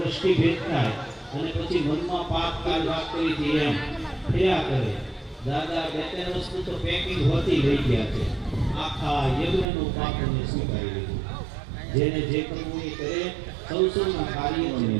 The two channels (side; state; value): left; drops out; at 9.7 s